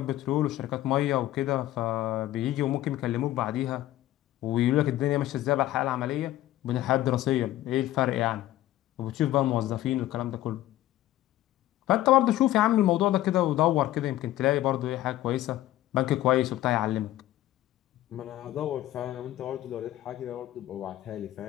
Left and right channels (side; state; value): right; quieter; 14.5 dB